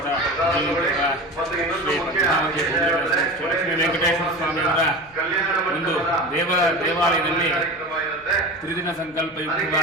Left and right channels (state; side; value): noise; left; hum, 28 dB below the sound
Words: ಶ್ರೀ ಪದ್ಮಾವತಿ ಶ್ರೀ ಲಕ್ಷ್ಮೀ ವೆಂಕಟೇಶ್ವರ ಸ್ವಾಮಿಯವರ ಒಂದು ದೇವಾಲಯದಲ್ಲಿ ತ್ರಿದಿನ